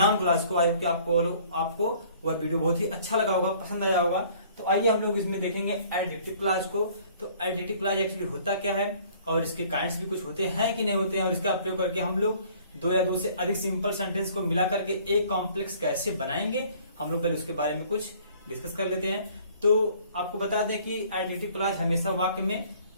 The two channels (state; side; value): inverted; both; correlation -0.55